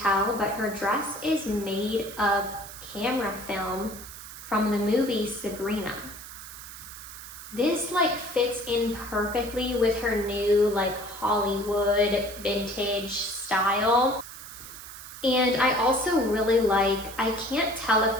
but her dress is made of camera film from the movie Sabrina. This like fits in perfectly with her new like Hollywood vintage style. And I also really like, I can't tell if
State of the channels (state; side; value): noise; right; hiss, 14 dB below the sound